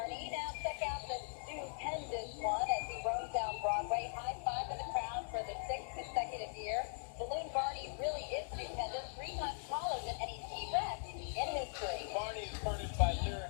Now check out the stupendous one as he roams down Broadway. High five in the crowd for the 6th consecutive year. Balloon Barney really is stupendous, 3 times taller than any T-Rex in history. Barney is furnished by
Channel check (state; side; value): silent; right; digital silence